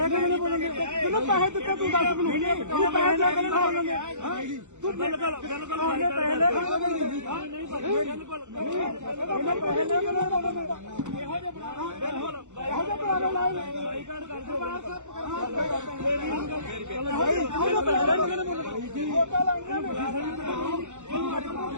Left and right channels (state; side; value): late; left; 0.84 ms